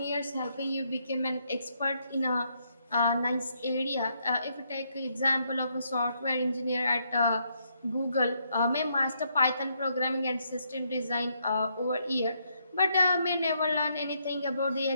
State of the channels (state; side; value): inverted; both; correlation -0.75